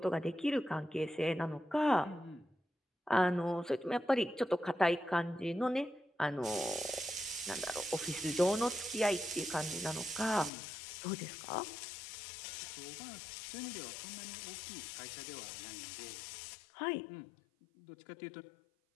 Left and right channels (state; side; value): drops out; right; at 10.5 s